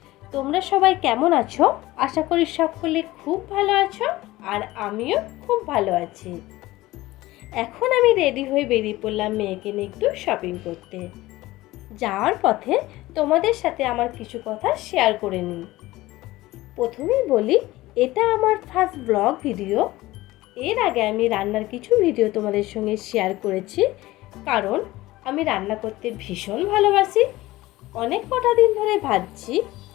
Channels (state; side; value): quieter; right; 18.0 dB